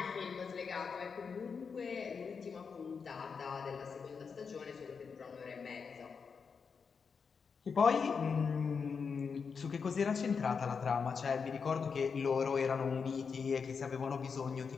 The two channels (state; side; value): quieter; right; 5.7 dB